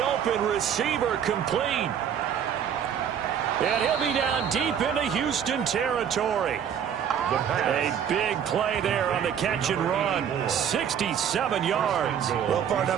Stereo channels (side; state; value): left; quieter; 8.6 dB